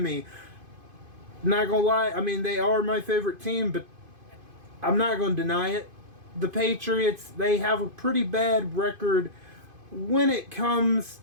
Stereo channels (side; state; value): left; late; 2.5 ms